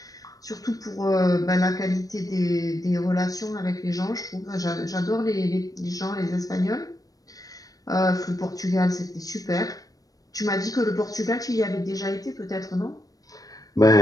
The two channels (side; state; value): right; late; 0.18 ms